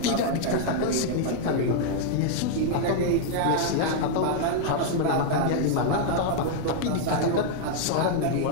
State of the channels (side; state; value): both; different; correlation 0.00